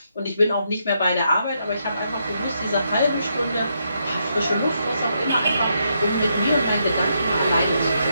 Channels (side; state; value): both; inverted; correlation -0.79